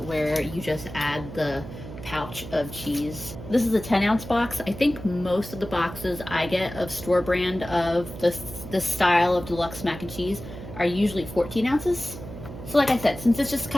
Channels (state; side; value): noise; right; hum, 12 dB below the sound